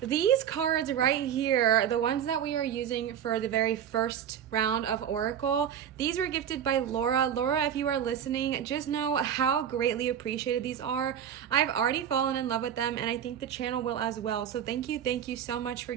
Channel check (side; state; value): left; quieter; 9.1 dB